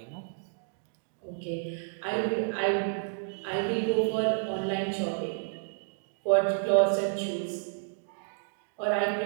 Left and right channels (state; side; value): silent; left; digital silence